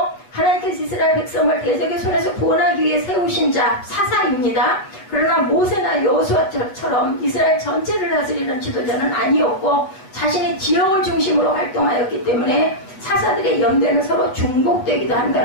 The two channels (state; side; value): late; right; 8.0 ms